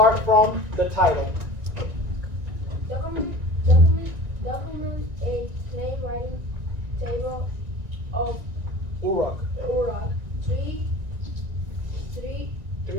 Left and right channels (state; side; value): late; left; 1.9 ms